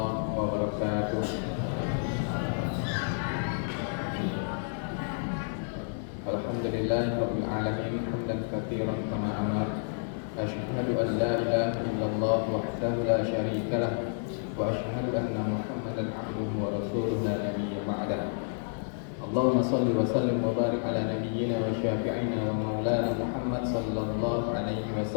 wabarakatuh. Alhamdulillahirabbil alamin hamdan katsiran kama amar. Asyhadu an la ilaha illallah wahdahu la syarika lah wa asyhadu anna Muhammadan abduhu wa rasuluhu la nabiyya ba'dah. Allahumma shalli wa sallim wa barik ala nabiyyina wa syafi'ina wa maulana Muhammad sallallahu alaihi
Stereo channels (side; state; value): right; silent; 56 dB below the other